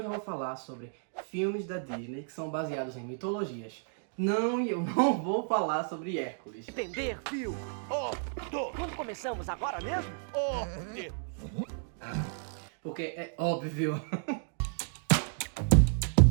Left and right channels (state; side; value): silent; left; digital silence